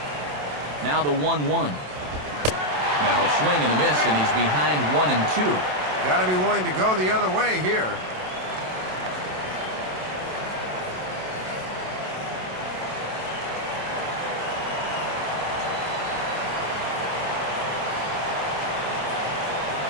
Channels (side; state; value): left; late; 27 ms